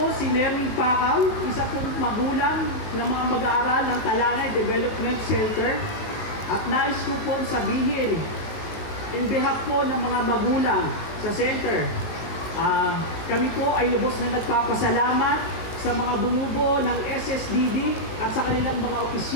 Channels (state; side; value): late; right; 18 ms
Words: si Nerwin Pacao, isa pong magulang ng mga mag-aaral ng Talanay Development Center. At nais ko po sabihin, in behalf po ng mga magulang sa center, kami po ay lubos na nagpapasalamat sa mga bumubuo ng SSDD at sa kanilang mga